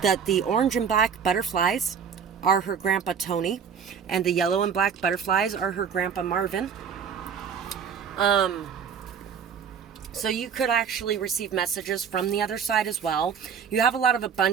that the orange and black butterflies are her grandpa Tony, and the yellow and black butterflies are her grandpa Marvin. So you could actually receive messages from the other side as well. You have a lot of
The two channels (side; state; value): left; quieter; 7.1 dB